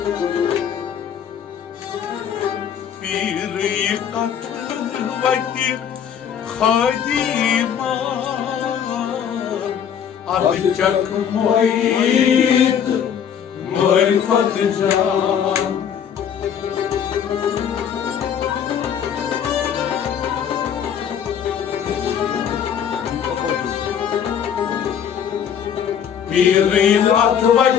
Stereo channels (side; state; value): right; quieter; 8.4 dB